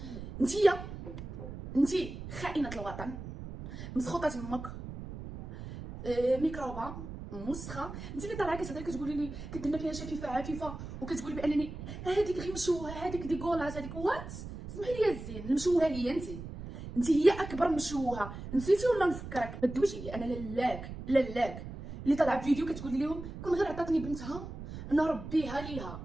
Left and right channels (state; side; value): noise; right; rumble, 10 dB below the sound